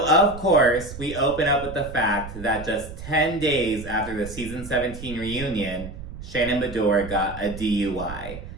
of course, we open up with the fact that just 10 days after the Season 17 reunion, Shannon Bedore got a DUI.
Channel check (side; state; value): right; noise; rumble, 12 dB below the sound